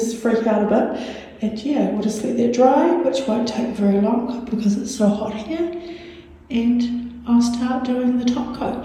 freak out a bit. And yeah, we'll just let that dry, which won't take very long because it's so hot here. And I'll start doing the top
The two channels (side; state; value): both; identical; correlation 1.00